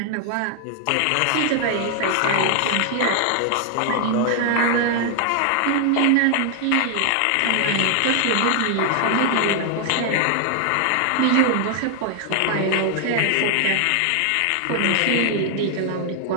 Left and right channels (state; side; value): different; both; correlation 0.00